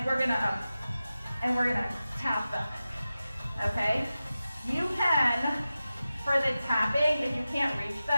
we're going to tap them. Okay? You can, for the tapping, if you can't reach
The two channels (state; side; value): inverted; both; correlation -0.94